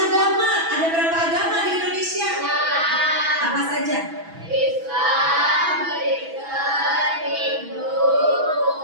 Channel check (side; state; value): left; late; 6.1 ms